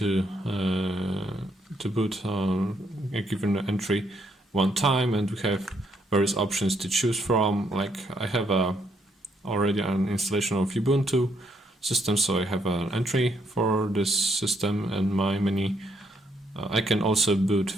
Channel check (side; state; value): both; normal; correlation 0.73